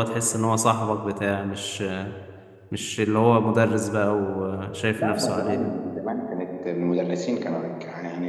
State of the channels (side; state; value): both; identical; correlation 1.00